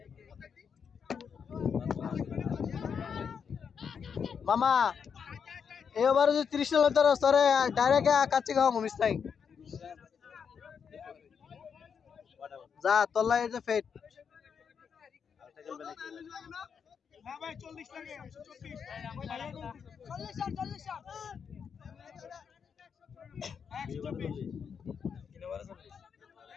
মামা এই ওভারে যদি 30 রান তোর স্তরে ডাইরেক্ট কাচ্চি খাওয়া মুমিস নাই যা তোলা এই যে ফেট না ভাই 40 লাগে 40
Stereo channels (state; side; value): quieter; right; 6.7 dB